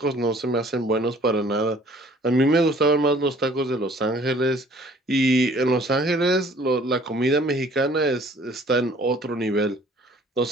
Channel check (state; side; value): normal; both; correlation 0.54